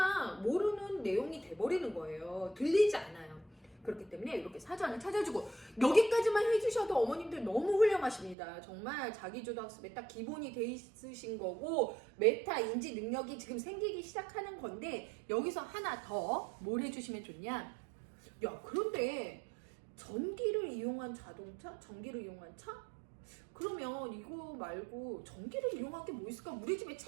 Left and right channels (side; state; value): left; drops out; at 8.3 s